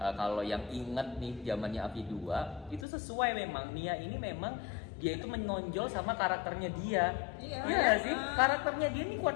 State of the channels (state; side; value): drops out; right; at 2.9 s